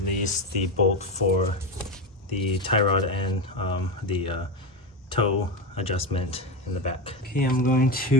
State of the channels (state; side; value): normal; both; correlation 0.16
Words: the bolt for the tie rod and the toe adjustment in the back. Okay, I'm going